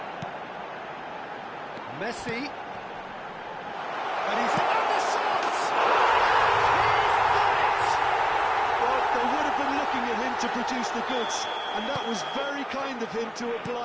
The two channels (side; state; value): both; identical; correlation 1.00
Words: Messi. And he's in the shots! He's done it! Well, they would have been looking at him to produce the goods, and that was very kind of him to